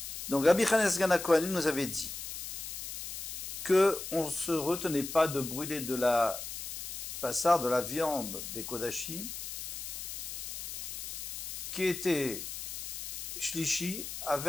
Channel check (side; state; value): left; noise; hiss, 7 dB below the sound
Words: Donc Rabbi Chanes Gana Kohanim nous avait dit que on ne se retenait pas de brûler de la passard, de la viande des Kodashim, qui était shlishi